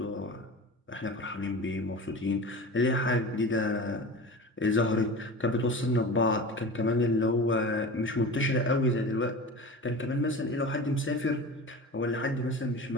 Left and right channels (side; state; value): both; normal; correlation 0.33